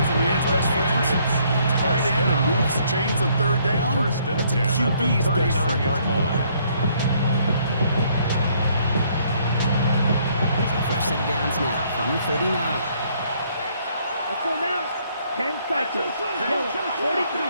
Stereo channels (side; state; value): both; inverted; correlation -0.66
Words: a man's best friend. Tight end and moves the chains on third down, First and that's a 10 at the QB's best friend. 39-yard line. So a fresh set of downs now from the 39. Let's go now. 10 cycles. Yellow, 43.